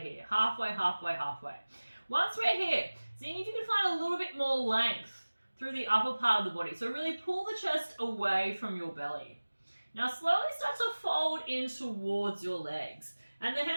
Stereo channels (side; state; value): both; inverted; correlation -1.00